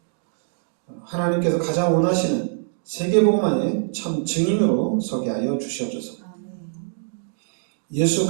하나님께서 가장 원하시는 세계복음화의 참 증인으로 서게 하여 주시옵소서.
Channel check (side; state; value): left; silent; digital silence